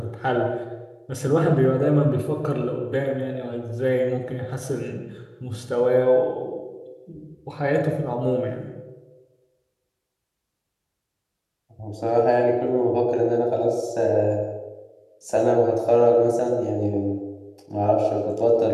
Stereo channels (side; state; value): both; identical; correlation 1.00